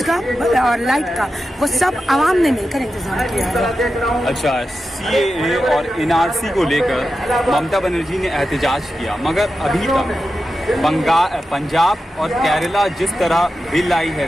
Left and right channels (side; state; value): both; normal; correlation 0.91